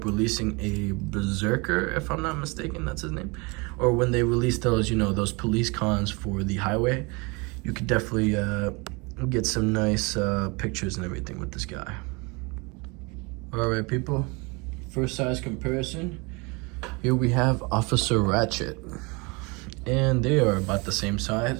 releasing a Berserker, if I'm not mistaken, that's his name, or when they release those, you know, those police cons for the highway, you could definitely get some nice pictures and everything with this guy. All right, people. First size comparison. Here we have Officer Ratchet, and they are about the same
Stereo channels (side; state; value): left; quieter; 28.4 dB